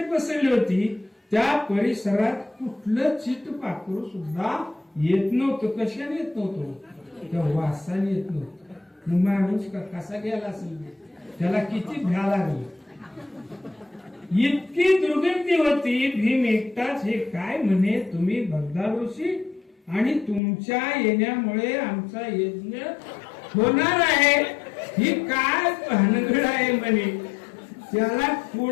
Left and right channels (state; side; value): drops out; right; at 20.4 s